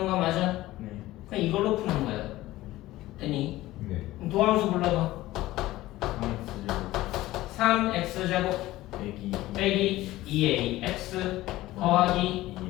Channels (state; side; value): quieter; right; 16.8 dB